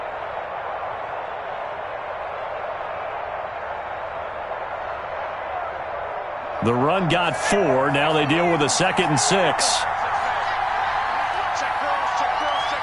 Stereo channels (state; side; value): identical; both; correlation 1.00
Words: The run got 4. Now they deal with a 2nd and 6.